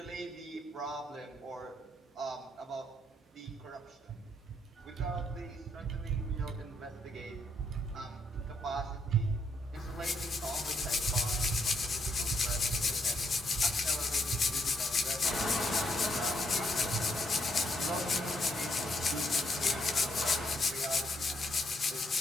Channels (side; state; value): both; normal; correlation 0.74